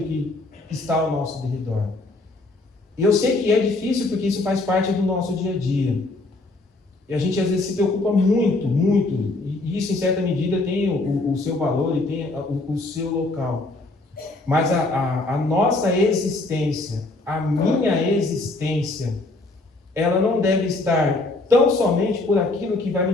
que está ao nosso redor. E eu sei que é difícil porque isso faz parte do nosso dia a dia. E a gente às vezes se preocupa muito, e isso em certa medida tem o seu valor e tem o seu local. Mas a nossa existência, a minha existência, ela não deve estar tão somente por aquilo que vai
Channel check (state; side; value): quieter; right; 3.0 dB